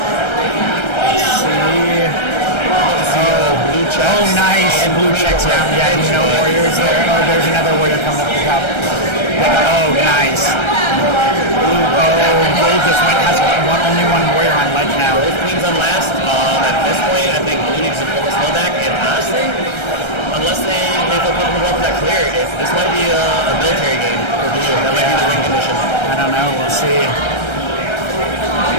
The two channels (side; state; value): right; late; 1.3 ms